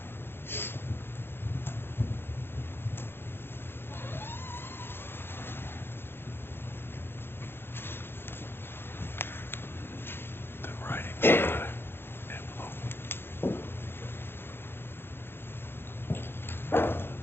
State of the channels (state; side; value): late; right; 0.11 ms